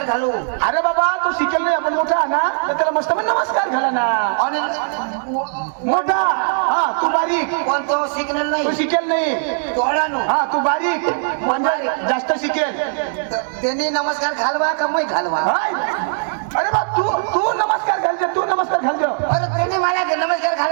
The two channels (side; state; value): left; silent; digital silence